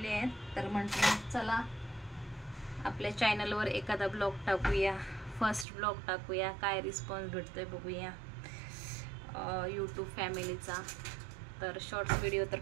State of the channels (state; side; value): drops out; left; at 5.7 s